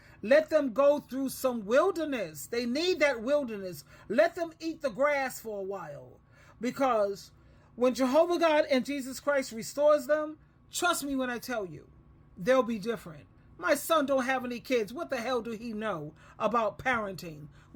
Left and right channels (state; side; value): identical; both; correlation 1.00